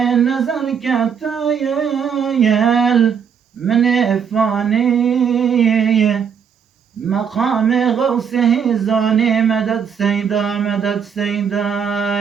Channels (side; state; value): left; quieter; 7.2 dB